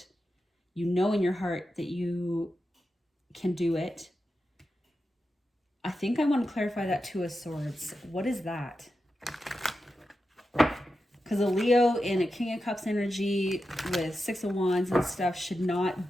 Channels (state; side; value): normal; both; correlation 0.90